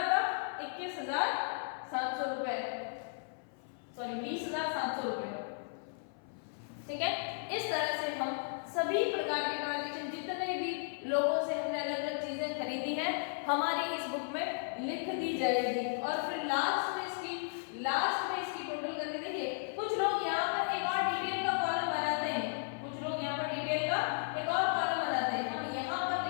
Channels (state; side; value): silent; right; 54 dB below the other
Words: 21700 रुपए, सॉरी 20700 रुपए, ठीक है। इस तरह से हम सभी प्रकार के ट्रांजैक्शन, जितने भी लोगों से हमने अलग अलग चीजें खरीदी हैं, हमारी इस बुक में लिख दी जाएगी। और फिर लास्ट में इसकी टोटल करके देखिए, कुछ लोग यहाँ पर एक और डिटेल का कॉलम बनाते हैं, कुछ लोग यहाँ पर डिटेल का एक और कॉलम बनाते हैं, हम यहाँ पर